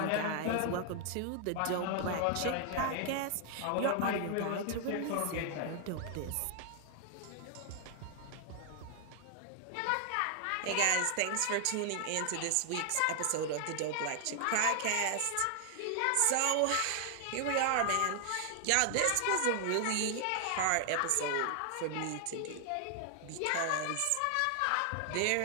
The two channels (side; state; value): both; different; correlation 0.00